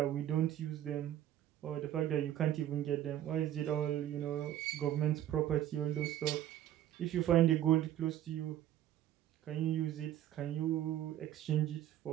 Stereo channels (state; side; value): quieter; left; 11.9 dB